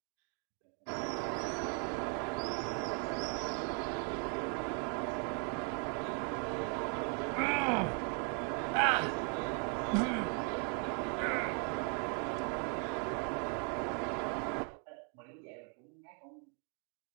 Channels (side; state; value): left; quieter; 38.9 dB